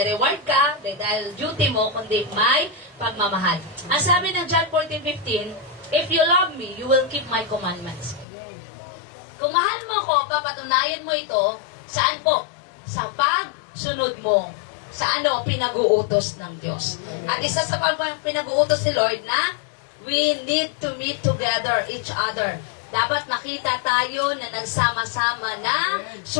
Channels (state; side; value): drops out; right; at 8.2 s